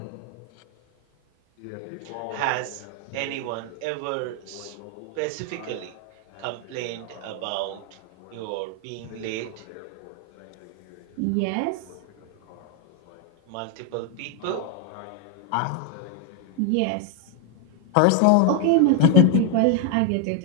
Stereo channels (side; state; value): both; different; correlation 0.00